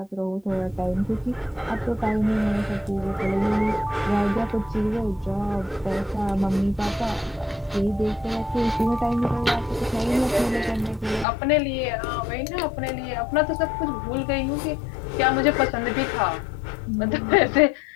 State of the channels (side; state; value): right; drops out; at 11.2 s